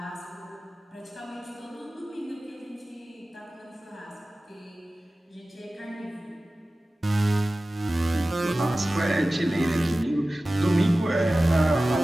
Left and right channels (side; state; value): both; normal; correlation 0.96